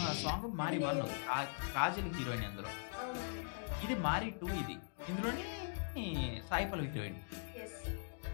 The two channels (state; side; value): silent; right; digital silence